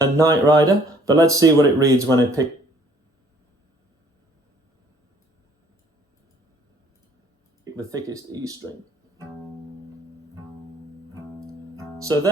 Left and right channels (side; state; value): both; normal; correlation 0.59